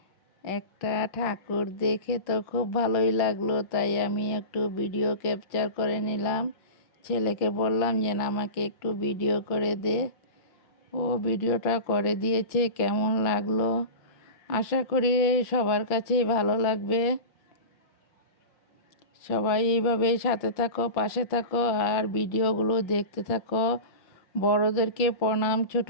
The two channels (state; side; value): late; right; 5.6 ms